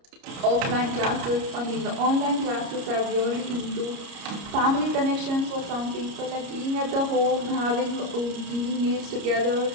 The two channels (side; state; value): left; late; 30 ms